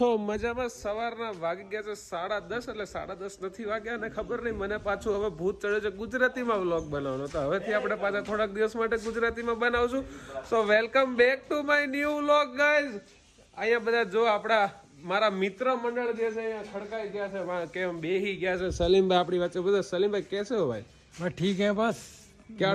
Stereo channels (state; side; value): identical; both; correlation 1.00